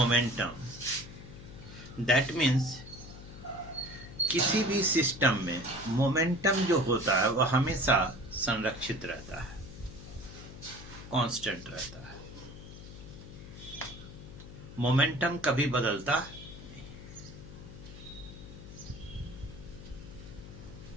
that means किसी भी सिस्टम में मोमेंटम जो होता है वह हमेशा संरक्षित रहता है, कांस्टेंट रहता है। मोमेंटम कभी बदलता नहीं।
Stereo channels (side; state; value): left; noise; hum, 14 dB below the sound